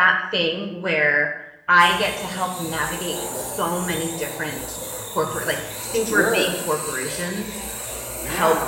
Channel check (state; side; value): identical; both; correlation 1.00